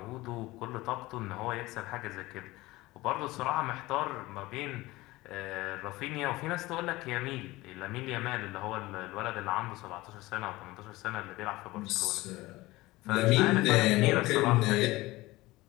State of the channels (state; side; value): quieter; right; 19.6 dB